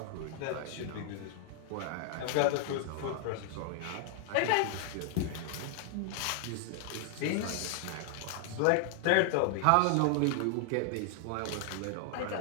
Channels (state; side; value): different; both; correlation 0.00